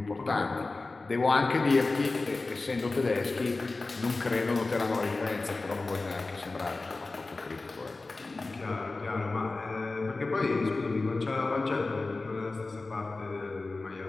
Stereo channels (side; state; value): right; quieter; 3.5 dB